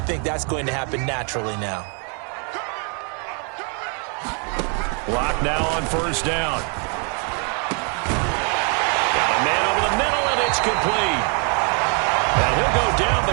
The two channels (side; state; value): left; quieter; 38.1 dB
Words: think that's going to happen naturally now. Lock now on first down. Got a man over the middle, and it's complete. And he'll go down,